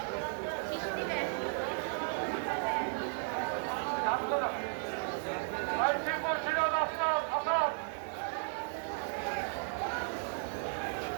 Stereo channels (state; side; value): silent; left; 55 dB below the other